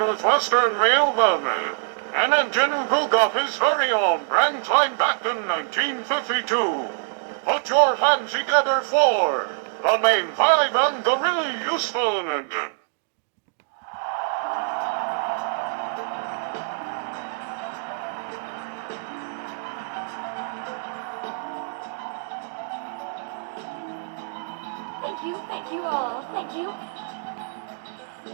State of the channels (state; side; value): silent; left; digital silence